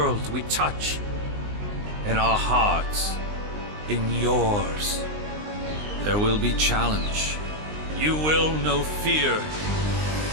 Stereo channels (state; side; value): late; left; 19 ms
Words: we touch, in our hearts, in yours. There will be challenge. You will know fear,